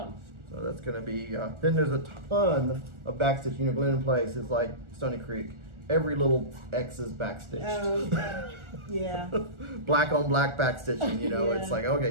So that's going to be, then there's a ton of backstitch. You know, Glendon Place is like Stony Creek. Every little X is backstitched. Okay. Yeah. Black on black backstitching, you know. Yeah. It's like,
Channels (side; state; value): left; late; 1.4 ms